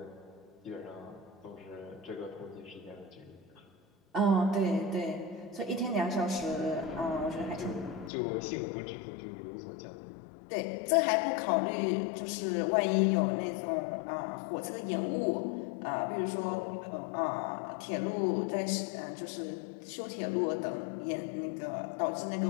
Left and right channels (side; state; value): right; drops out; at 8.1 s